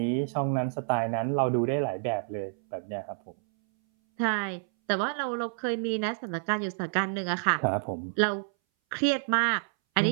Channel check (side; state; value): left; silent; 59 dB below the other